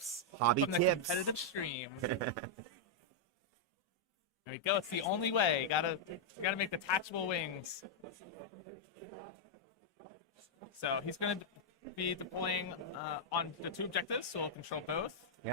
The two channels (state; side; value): normal; both; correlation -0.05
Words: from the competitive stream. There we go. It's the only way. You gotta make detachable wings. So he's gonna be deploying on the 2 objectives, so we'll control both.